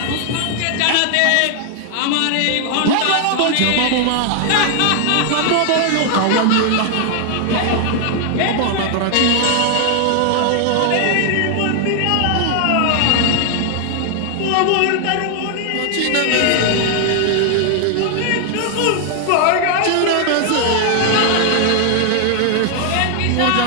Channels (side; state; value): both; different; correlation 0.00